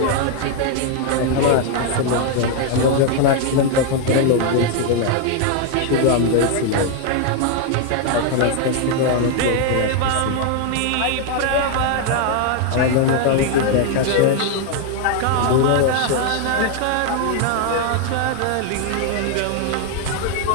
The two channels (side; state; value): both; different; correlation 0.00